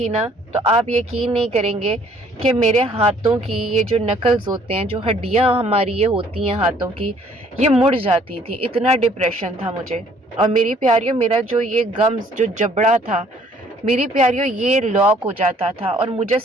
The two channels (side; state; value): both; normal; correlation 0.60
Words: نا، تو آپ یقین نہیں کریں گے کہ میرے ہاتھوں کی یہ جو نکلز ہوتے ہیں، جو ہڈیاں ہماری یہ ہوتی ہیں ہاتھوں کی، یہ مڑ جاتی تھی، اتنا ڈپریشن تھا مجھے۔ اور میری پیاریوں، میرا جو یہ گمز جو جبڑا تھا، میری پیاریوں یہ لاک ہو جاتا تھا، اور مجھے